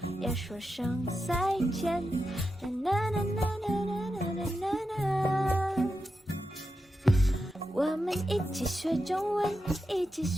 要说声再见。啦啦啦啦啦啦啦啦啦。我们一起学中文，一起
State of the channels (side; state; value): both; normal; correlation 0.89